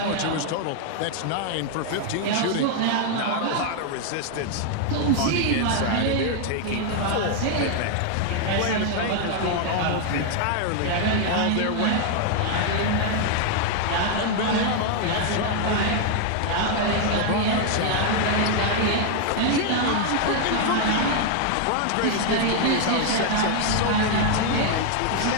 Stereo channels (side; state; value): both; different; correlation 0.00